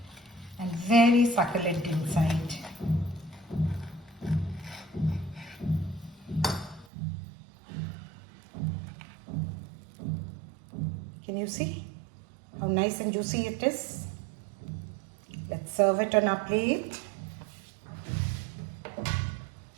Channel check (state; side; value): drops out; left; at 6.9 s